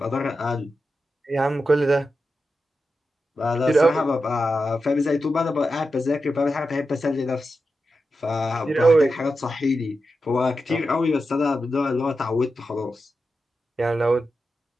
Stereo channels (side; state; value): both; normal; correlation 0.90